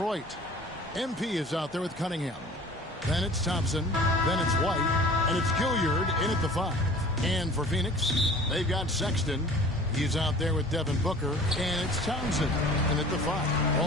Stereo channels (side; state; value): both; normal; correlation 0.45